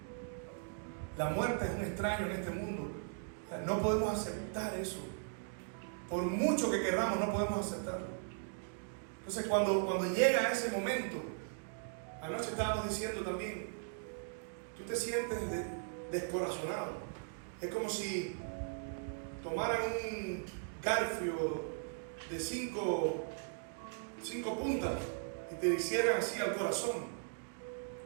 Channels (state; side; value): silent; left; digital silence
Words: La muerte es un extraño en este mundo. No podemos aceptar eso. Por mucho que queramos, no podemos aceptarlo. Entonces, cuando llega ese momento, anoche estábamos diciendo también, tú te sientes descorazonado. Es como si tomaran un garfio de cinco puntas y te hicieran así al corazón